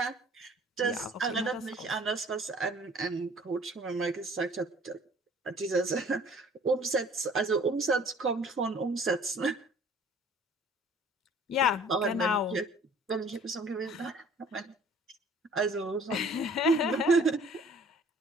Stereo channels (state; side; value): normal; both; correlation 0.52